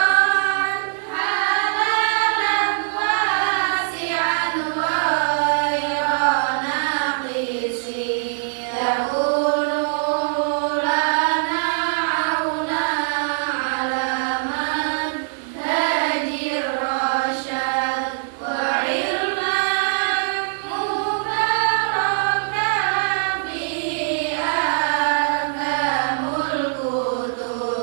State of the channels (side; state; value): left; silent; digital silence